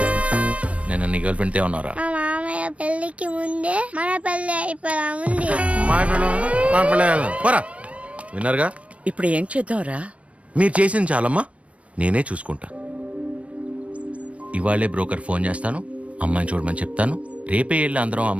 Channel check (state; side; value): late; left; 0.064 ms